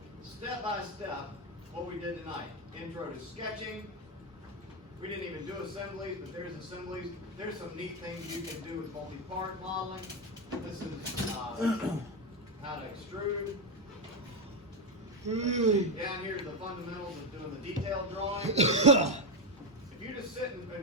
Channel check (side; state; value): both; normal; correlation 0.09